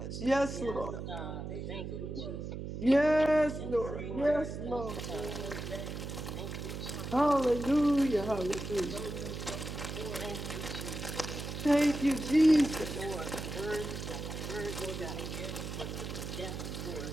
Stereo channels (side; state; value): right; noise; hum, 6 dB below the sound